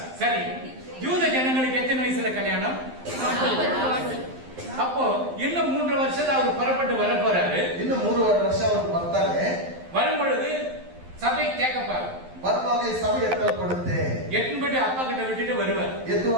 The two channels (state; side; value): late; left; 12 ms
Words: சரி, யூத ஜனங்களுக்கு எத்தனை வயசுல கல்யாணம்? அப்போ இன்னும் 3 வருஷத்துல அவர் புறப்பட்டு வர போறாரு. ಇನ್ನು 3 ವರ್ಷ ಅವರು ಬರ್ತಾರೆ. வரும்பொழுது சபை கேட்கப்பாரு. ಬರುವಾಗ ಈ ಸಭೆ ಎತ್ತಲ್ಪಡುತ್ತೆ. எட்டும்படி அப்பா கிட்ட விட்டுட்டு வருவார்.